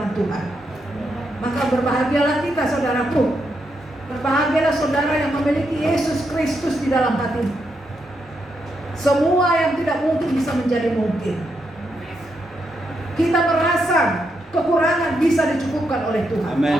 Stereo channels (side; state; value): both; normal; correlation 0.81